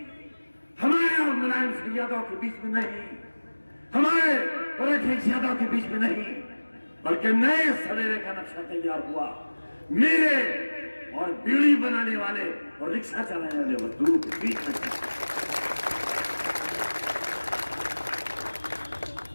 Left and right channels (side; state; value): both; inverted; correlation -1.00